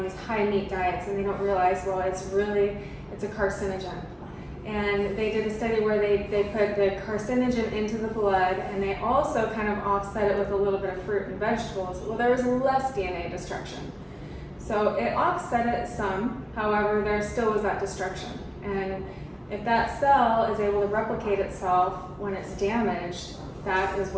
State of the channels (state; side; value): identical; both; correlation 1.00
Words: these high meat diets and they don't realize, well, it's a carcinogen. And they did a study where they put the carcinogen into the blood, and they also kind of offset it with a little bit of fruit and vegetables. Well, there was less DNA destruction. So it offset it some, however, there still was that destruction. And if that cell is able to replicate itself when it's damaged, that is